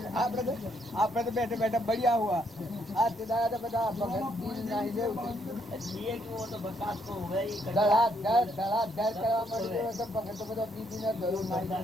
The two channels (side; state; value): both; normal; correlation 0.72